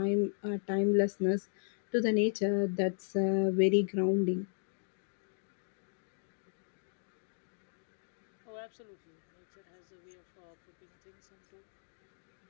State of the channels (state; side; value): silent; right; 54 dB below the other